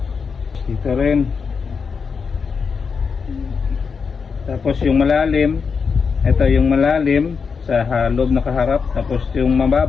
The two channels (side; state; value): right; quieter; 5.6 dB